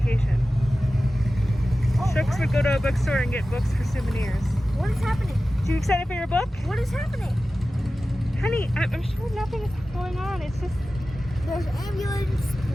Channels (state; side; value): normal; both; correlation 0.95